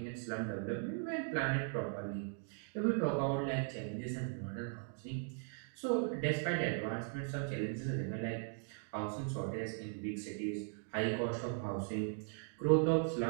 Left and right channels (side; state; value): left; silent; 52 dB below the other